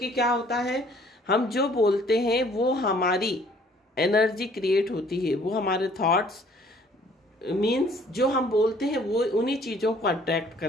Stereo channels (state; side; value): normal; both; correlation 0.58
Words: क्या होता है, हम जो बोलते हैं वो हमारी एनर्जी क्रिएट होती है, वो हमारे थॉट्स मीन्स जो हम बोलते हैं वो उन्हीं चीज़ों को अट्रैक्ट